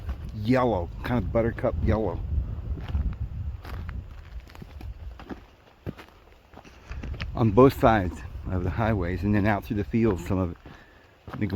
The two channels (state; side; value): identical; both; correlation 1.00